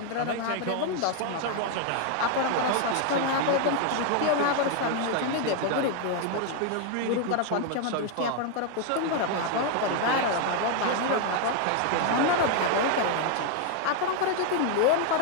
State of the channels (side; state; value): both; different; correlation 0.01